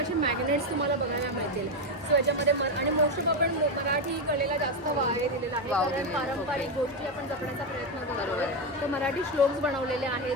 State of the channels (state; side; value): normal; both; correlation 0.08